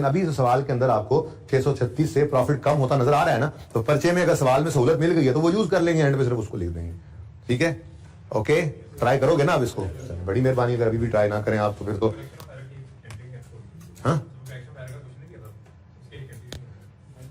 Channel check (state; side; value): identical; both; correlation 1.00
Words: अभी इस सवाल के अंदर आपको 636 से प्रॉफिट कम होता नजर आ रहा है ना, तो पर्चे में अगर सवाल में सहूलत मिल गई है तो वो यूज कर लेंगे, एंड पे सिर्फ उसको लिख देंगे, ठीक है। ओके, ट्राई करोगे ना आप इसको, बड़ी मेहरबानी, अगर अभी भी ट्राई ना करें आप तो फिर तो